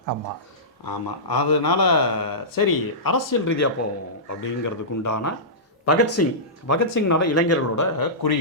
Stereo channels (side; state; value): both; normal; correlation -0.17